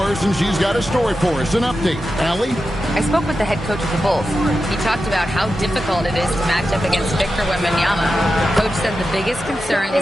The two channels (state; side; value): normal; both; correlation 0.90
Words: and she's got a story for us, an update. Allie? I spoke with the head coach of the Bulls. He talked about how difficult it is to match up against Victor Wembanyama. Coach said the biggest concern is